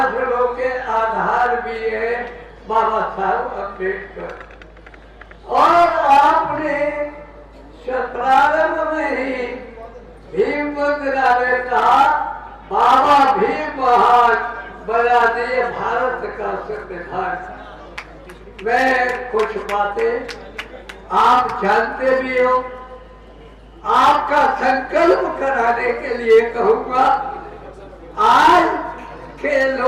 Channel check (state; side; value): identical; both; correlation 1.00